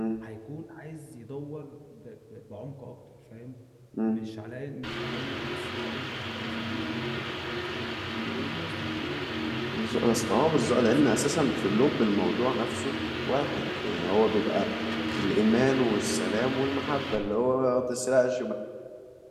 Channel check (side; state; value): both; identical; correlation 1.00